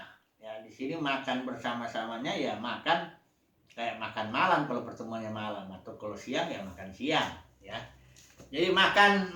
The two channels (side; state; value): both; identical; correlation 1.00